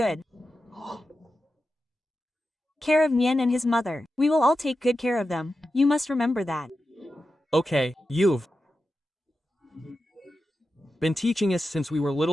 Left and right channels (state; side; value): normal; both; correlation 0.91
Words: care of Nian and his mother. We will all take good care of them. You must remember that. Okay, you've been teaching us since we were